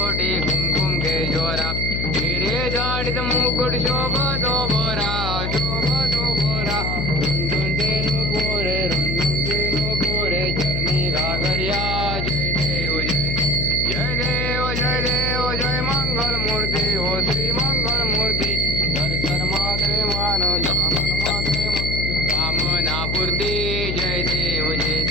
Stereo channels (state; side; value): noise; left; hum, 2 dB below the sound